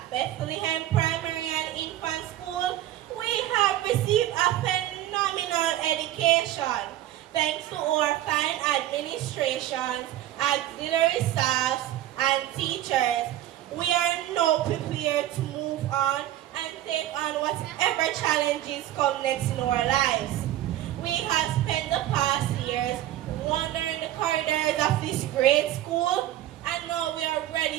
Bethlehem Primary and Infant School, we have received a phenomenal education. Thanks to our fine administrations, auxiliary staffs, and teachers, we are now prepared to move on and take on whatever challenges come next in our lives. We corridors of this great school, and now we are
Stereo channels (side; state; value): left; quieter; 13.5 dB